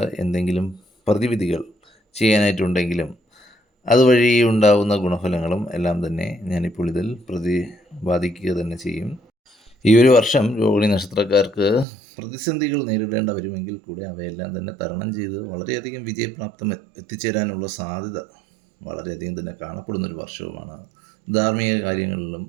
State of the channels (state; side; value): drops out; left; at 11.9 s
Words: എന്തെങ്കിലും പ്രതിവിധികൾ ചെയ്യാനായിട്ടുണ്ടെങ്കിലും അതുവഴി ഉണ്ടാകുന്ന ഗുണഫലങ്ങളും എല്ലാം തന്നെ ഞാനിപ്പോൾ ഇതിൽ പ്രതിപാദിക്കുക തന്നെ ചെയ്യും. ഈ ഒരു വർഷം രോഹിണി നക്ഷത്രക്കാർക്ക് പ്രതിസന്ധികൾ നേരിടേണ്ട വരുമെങ്കിൽ കൂടെ അവയെല്ലാം തന്നെ തരണം ചെയ്ത് വളരെയധികം വിജയപ്രാപ്തം എത്തിച്ചേരാനുള്ള സാധ്യത വളരെയധികം തന്നെ കാണപ്പെടുന്നൊരു വർഷവുമാണ്. ധാർമ്മിക കാര്യങ്ങളിലും